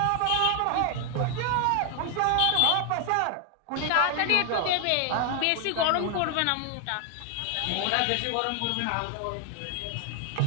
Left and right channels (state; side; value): different; both; correlation 0.00